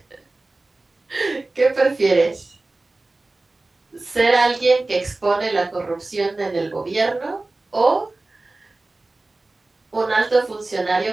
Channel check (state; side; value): quieter; left; 3.1 dB